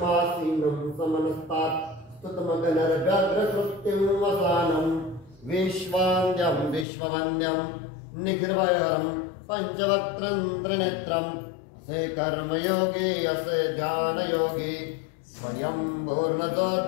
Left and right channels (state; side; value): drops out; right; at 6.9 s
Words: समनस्तात् स्तुतमगनर्व्यग्रकृत्तिं वसानं विश्वान्द्यं विश्ववन्द्यं निखिलभयहरं पञ्चवक्त्रं त्रिनेत्रं असे कर्मयोगी असे ध्यानयोगी स्वयं पूर्णतो